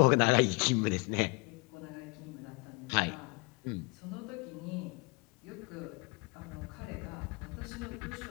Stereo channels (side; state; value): right; quieter; 29.5 dB